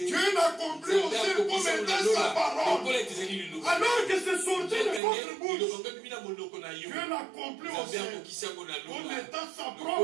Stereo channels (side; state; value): left; drops out; at 5.0 s